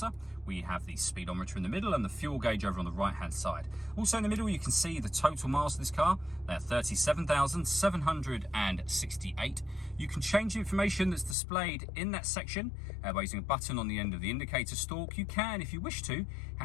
We have the speedometer in the middle and the fuel gauge over on the right-hand side. Also in the middle, you can see the total miles of this car. They're 37,768. You can change the information that's displayed in that section by using a button on the end of the indicator stalk. You can, if you wish to,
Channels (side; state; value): right; drops out; at 11.4 s